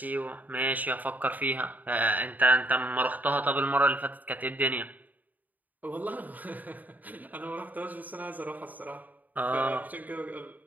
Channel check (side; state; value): left; late; 0.081 ms